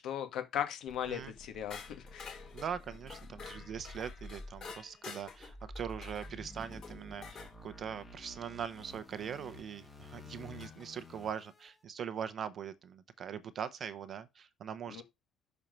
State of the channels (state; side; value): normal; both; correlation 0.58